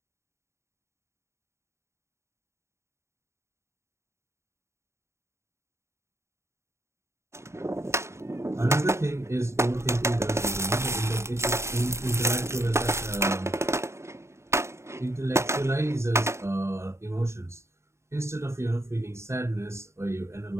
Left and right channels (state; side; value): late; left; 0.13 ms